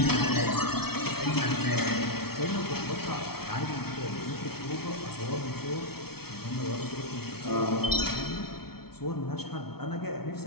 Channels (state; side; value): late; right; 0.95 ms